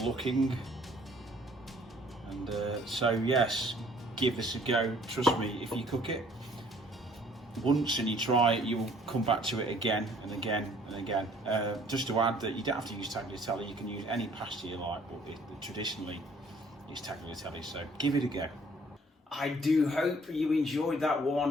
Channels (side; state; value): both; normal; correlation 0.58